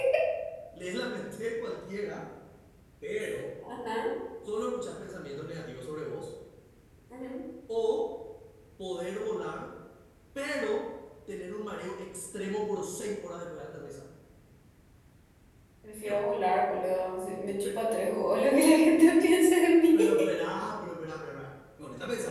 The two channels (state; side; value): identical; both; correlation 1.00